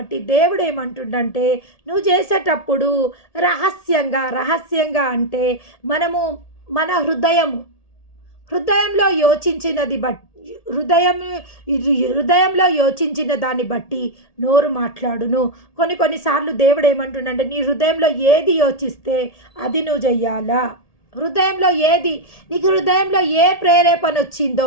దేవుడు ఏమంటుండంటే, నువ్వు చేసేటప్పుడు రహస్యంగా అంటే మనము మన హృదయంలో యోచించినది బట్టి, హృదయంలో యోచించిన దాన్ని బట్టి నోరు మాట్లాడును. కొన్నిసార్లు దేవుడు ఏమంటుండంటే, నీ హృదయంలో ఏది యోచిస్తే అది నువ్వు చెయ్యాలా. నీకు హృదయంలో ఏ ప్రేరేపణ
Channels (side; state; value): right; late; 1.8 ms